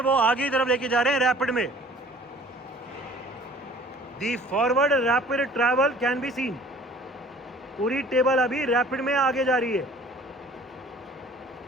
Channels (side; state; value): both; normal; correlation 0.51